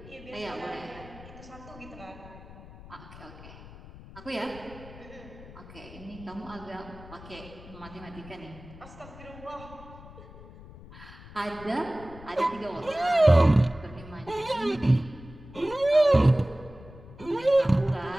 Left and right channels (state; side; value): noise; left; rumble, 17 dB below the sound